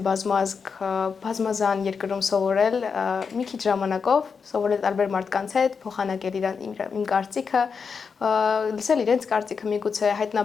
բազմազգ, բազմազան երկրում սովորել, մի քիչ ժամանակով սովորել տարբեր մարդկանց հետ, փոխանակել իմ կարծիքը, լսել իրենց կարծիքը, միգուցե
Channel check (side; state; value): right; quieter; 5.7 dB